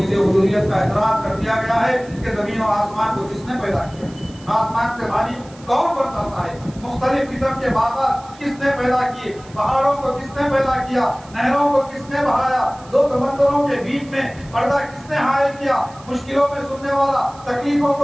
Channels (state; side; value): noise; right; hiss, 24 dB below the sound